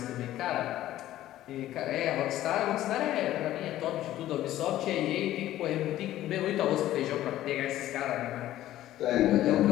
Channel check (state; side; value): quieter; right; 13.9 dB